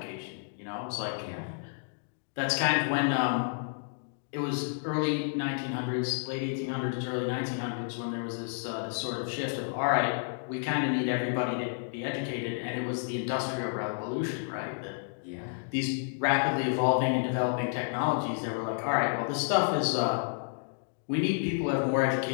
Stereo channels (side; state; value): right; silent; digital silence